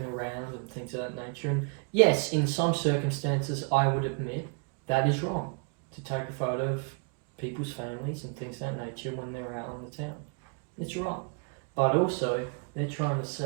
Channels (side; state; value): left; quieter; 37.6 dB